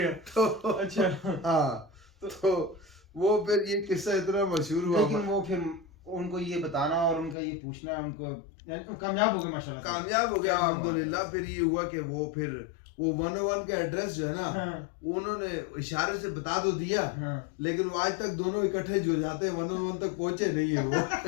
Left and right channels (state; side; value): drops out; right; at 7.4 s